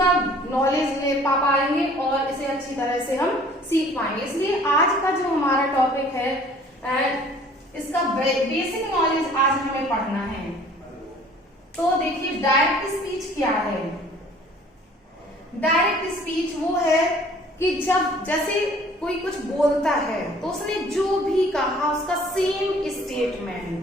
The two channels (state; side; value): normal; both; correlation 0.53